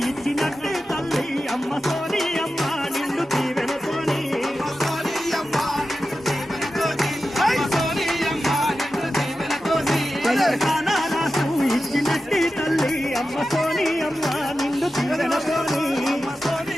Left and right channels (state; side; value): normal; both; correlation 0.92